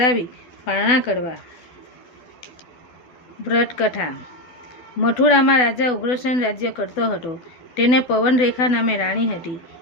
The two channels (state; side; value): late; right; 12 ms